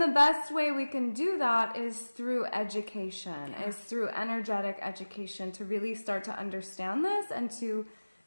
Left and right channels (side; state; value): both; inverted; correlation -1.00